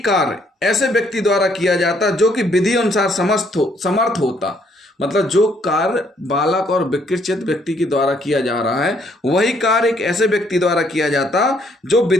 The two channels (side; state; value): both; normal; correlation 0.68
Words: कार्य ऐसे व्यक्ति द्वारा किया जाता जो कि विधि अनुसार समर्थ होता, मतलब जो कार्य बालक और विकृत व्यक्ति के द्वारा किया जा रहा है वही कार्य एक ऐसे व्यक्ति द्वारा किया जाता जो